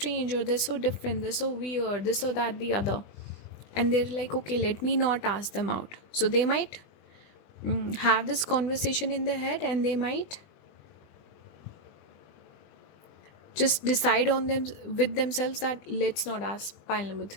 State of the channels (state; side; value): late; right; 20 ms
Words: or they're so different, they're so weird, this or that, the other. And they're like, okay, let me not ask them out. So they might have this conversation in their head, and they might just decide on them with themselves that let's not ask pile number